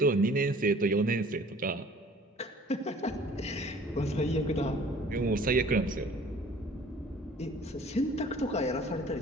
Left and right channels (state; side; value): normal; both; correlation 0.50